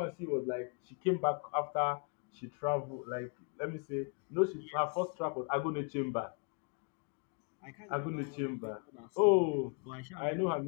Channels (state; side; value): quieter; right; 37.6 dB